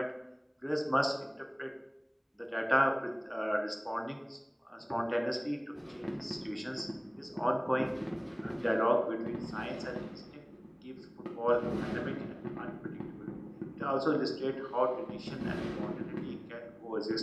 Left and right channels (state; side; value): identical; both; correlation 1.00